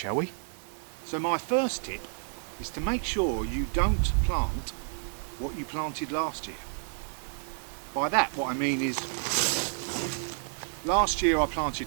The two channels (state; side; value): silent; left; 58 dB below the other